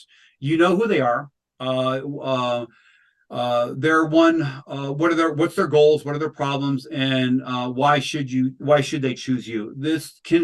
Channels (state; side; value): identical; both; correlation 1.00